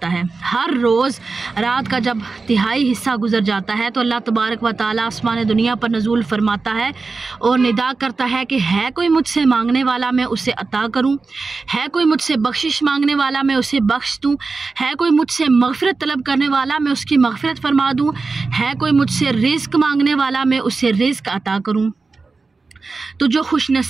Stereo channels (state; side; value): quieter; left; 4.1 dB